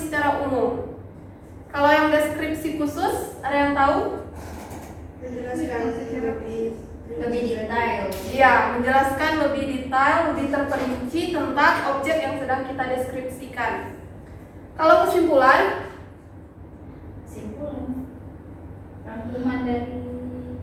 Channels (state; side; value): identical; both; correlation 1.00